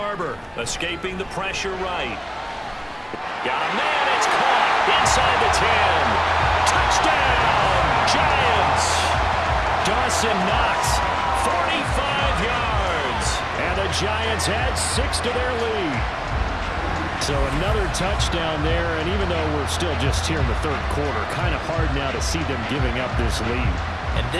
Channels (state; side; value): identical; both; correlation 1.00